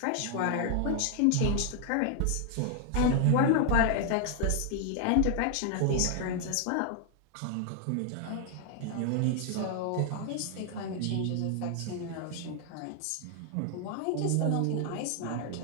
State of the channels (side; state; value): both; different; correlation 0.00